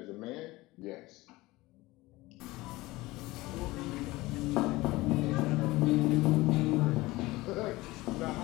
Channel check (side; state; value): right; quieter; 19.9 dB